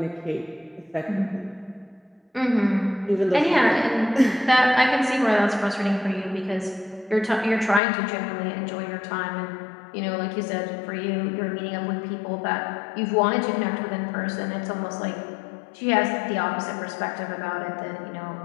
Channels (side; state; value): right; drops out; at 7.8 s